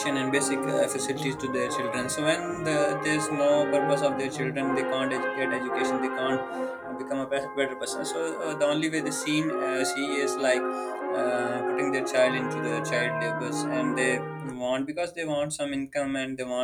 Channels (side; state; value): both; identical; correlation 1.00